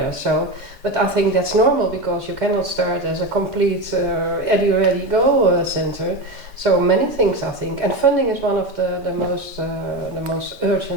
So, but I think that's normal, because you cannot start as a complete ready go center. So many things, I think, and funding is one of the most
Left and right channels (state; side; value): normal; both; correlation 0.19